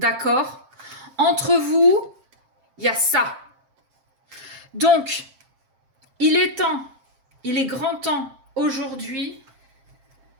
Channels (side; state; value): left; late; 7.5 ms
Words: Entre vous, il y a ça. Donc, il est grand temps aujourd'hui